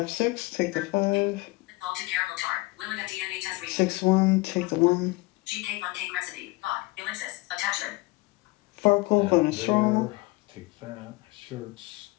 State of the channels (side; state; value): right; quieter; 22.3 dB